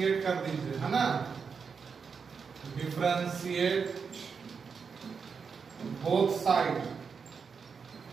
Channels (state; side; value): quieter; left; 5.8 dB